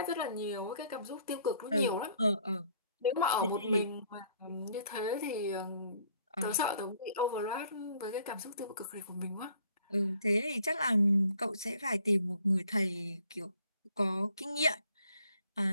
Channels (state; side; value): inverted; both; correlation -0.62